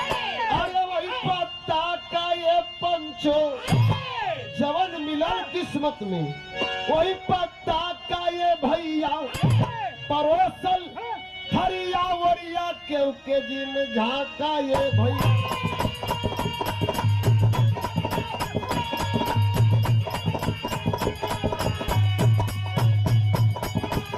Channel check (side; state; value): both; identical; correlation 1.00